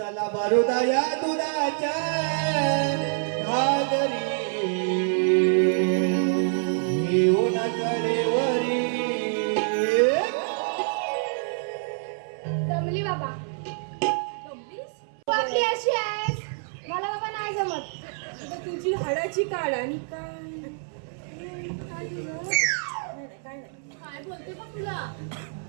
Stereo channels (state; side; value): silent; left; 61 dB below the other